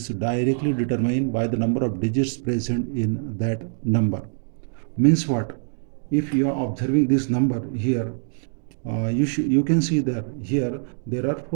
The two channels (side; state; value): left; silent; digital silence